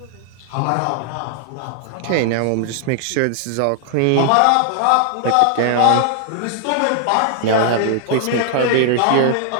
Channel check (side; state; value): both; different; correlation 0.00